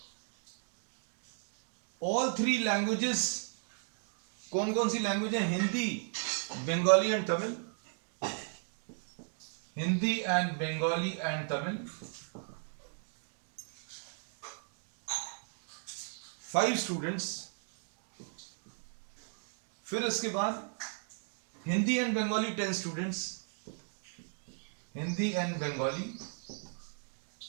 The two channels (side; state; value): left; silent; 54 dB below the other